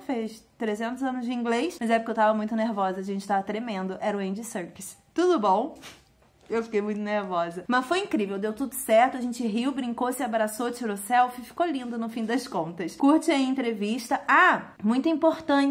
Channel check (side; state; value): both; identical; correlation 1.00